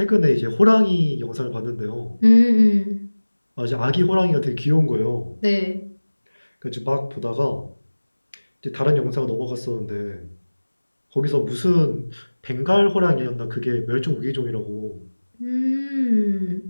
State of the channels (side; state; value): both; inverted; correlation -1.00